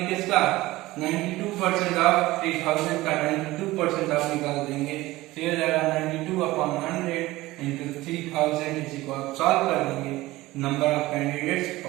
किसका, 92% ऑफ 3000 का 92% आप निकाल देंगे, तो ये जाएगा 92/100 इंटू 3000, इसी को आप सॉल्व कर देंगे, नंबर ऑफ कैंडिडेट्स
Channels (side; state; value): left; quieter; 18.4 dB